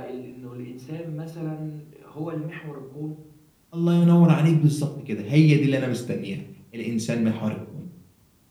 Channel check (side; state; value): both; identical; correlation 1.00